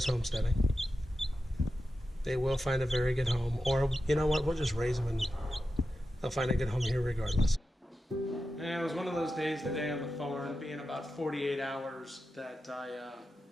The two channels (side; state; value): both; normal; correlation 0.91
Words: homesteading. They will find a very good home. Or, you know what, we'll just raise them and they'll find a good home here regardless. And it was one of those days today on the farm, being about 48 hours, that I